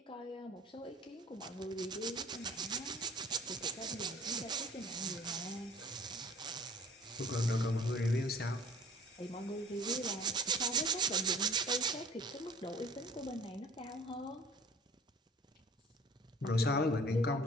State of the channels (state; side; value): normal; both; correlation 0.47